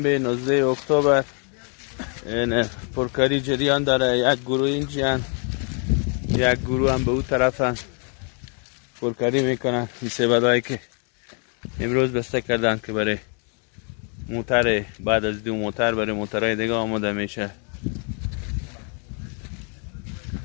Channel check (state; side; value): quieter; right; 39.2 dB